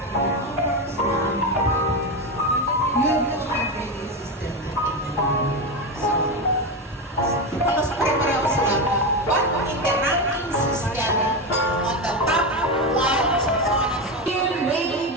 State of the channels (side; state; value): both; normal; correlation 0.15